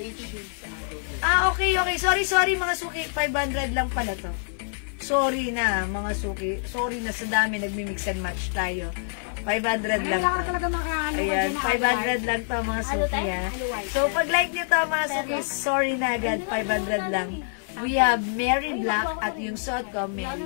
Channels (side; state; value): right; silent; 61 dB below the other